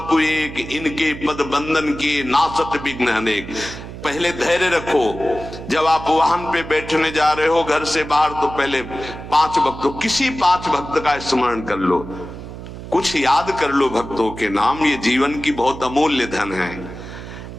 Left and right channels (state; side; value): noise; right; hum, 12 dB below the sound